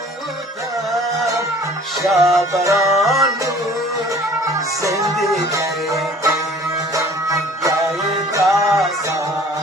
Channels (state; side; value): normal; both; correlation 0.51